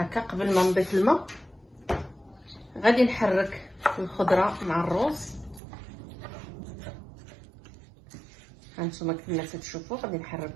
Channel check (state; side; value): drops out; left; at 5.6 s